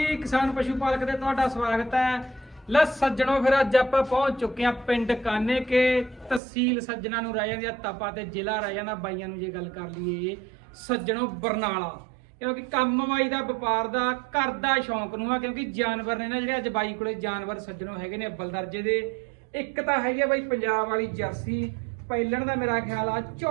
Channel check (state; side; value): drops out; left; at 6.4 s